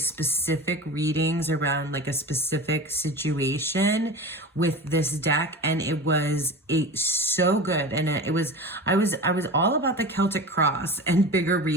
readings around like a specific situation with this deck, and it was so good. And I was all about the Celtic cross and bigger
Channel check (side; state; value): both; normal; correlation 0.31